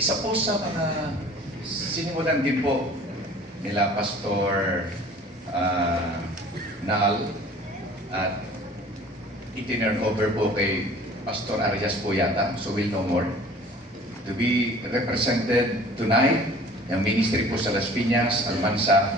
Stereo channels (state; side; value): normal; both; correlation 0.48